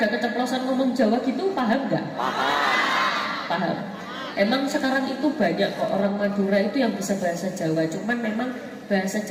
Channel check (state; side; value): identical; both; correlation 1.00